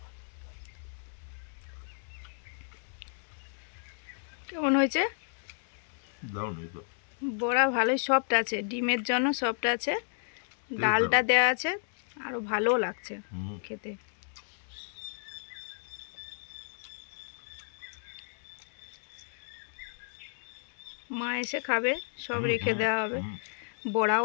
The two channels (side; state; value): right; silent; digital silence